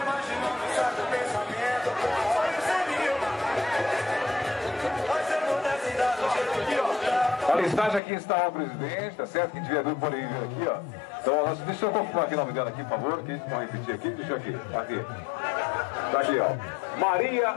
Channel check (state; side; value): drops out; right; at 8.0 s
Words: A listagem aqui está o presidente, tá certo? Quem tiver dúvida pode vir aqui, ó. Então, deixa eu confirmar aqui o nome dela aqui, por favor, que vão repetir aqui, deixa aqui. Tá aqui, ó. Maria